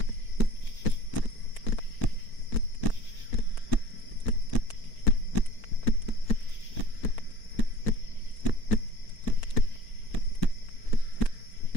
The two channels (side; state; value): right; late; 4.4 ms